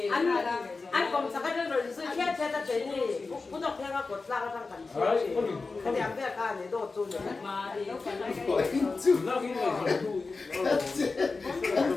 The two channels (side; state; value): right; quieter; 4.0 dB